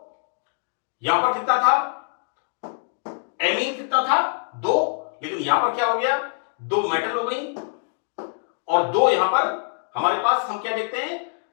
यहां पर कितना था, एमीन कितना था, 2, लेकिन यहां पर क्या हो गया, 2 मेटल हो गई और 2 यहां पर हमारे पास हम क्या देखते हैं,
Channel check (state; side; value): silent; right; digital silence